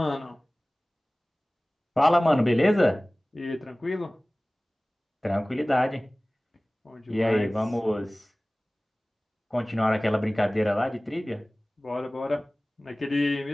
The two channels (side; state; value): both; normal; correlation 0.98